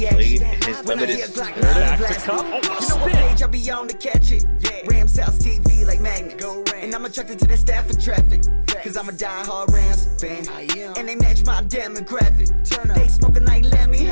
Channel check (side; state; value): both; inverted; correlation -1.00